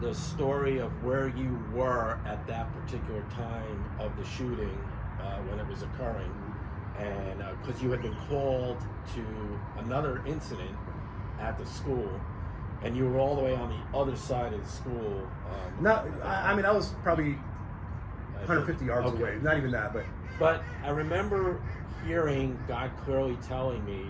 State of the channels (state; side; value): identical; both; correlation 1.00